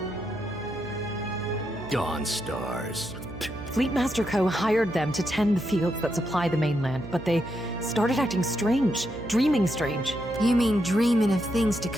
Dawn Stars. Fleetmaster Co. hired them to tend the fields that supply the mainland, but they started acting strange, dreaming strange. You mean dreaming of things to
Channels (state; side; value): noise; right; hum, 12 dB below the sound